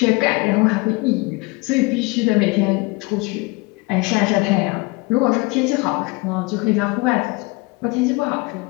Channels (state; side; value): quieter; right; 25.5 dB